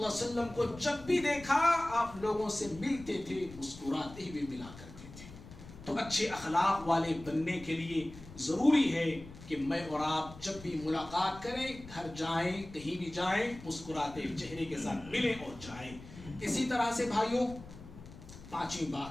وسلم کو جب بھی دیکھا آپ لوگوں سے ملتے تھے، مسکراتے ہوئے ملا کرتے تھے. تو اچھے اخلاق والے بننے کے لیے ضروری ہے کہ میں اور آپ جب بھی ملاقات کریں، گھر جائیں، کہیں بھی جائیں، مسکراتے چہرے کے ساتھ ملیں اور جائیں. اسی طرح سے بھائیوں، پانچویں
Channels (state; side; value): noise; left; rumble, 16 dB below the sound